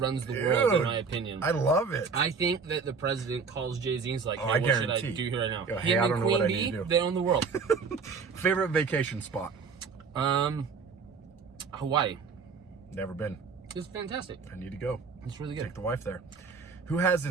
the world, in my opinion. I love it. I think that the president calls Jay-Z and is like, hey, I what guarantee. should I do here right now? Yo, hey, I don't know what I need to do. They own the world. Favorite vacation spot? Hawaii. Never been. It's fantastic. I need to go. It's really good. Take the wife there. Who has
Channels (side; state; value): left; quieter; 5.3 dB